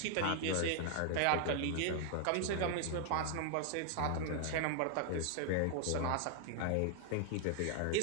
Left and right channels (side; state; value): both; different; correlation 0.00